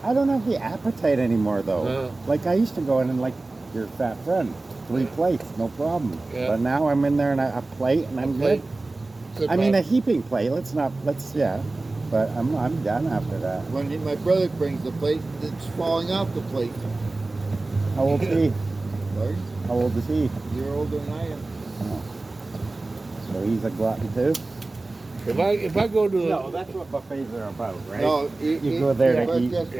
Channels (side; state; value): left; quieter; 3.2 dB